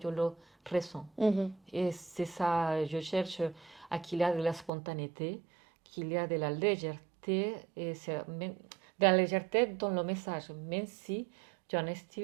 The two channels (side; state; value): left; drops out; at 4.7 s